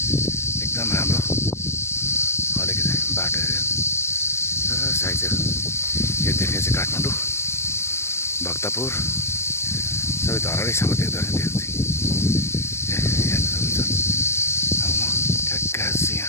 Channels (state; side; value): late; right; 0.13 ms